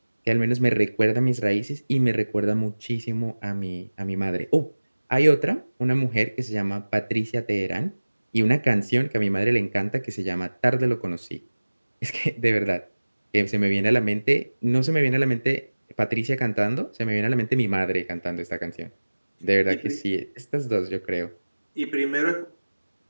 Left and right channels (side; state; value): both; inverted; correlation -1.00